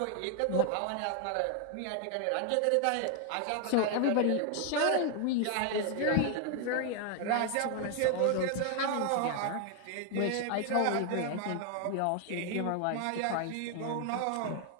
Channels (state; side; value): different; both; correlation 0.00